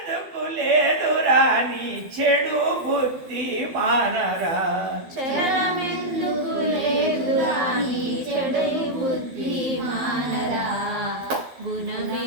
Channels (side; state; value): left; late; 12 ms